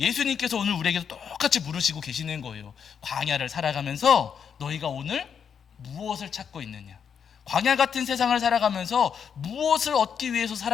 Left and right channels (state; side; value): quieter; right; 7.3 dB